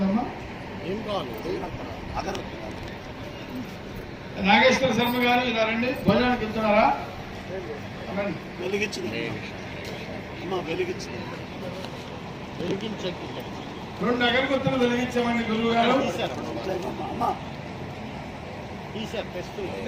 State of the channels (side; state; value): both; identical; correlation 1.00